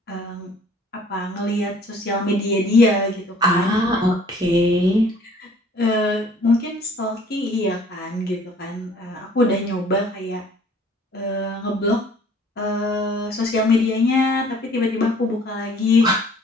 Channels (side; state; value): both; normal; correlation 0.54